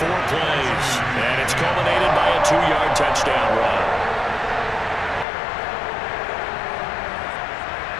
plays. And it's culminated by a 2-yard touchdown run.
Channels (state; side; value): drops out; right; at 5.2 s